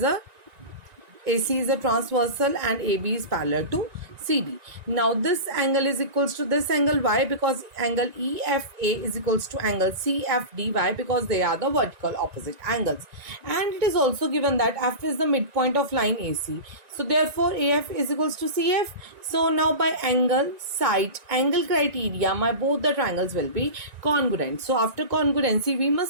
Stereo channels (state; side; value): late; left; 1.9 ms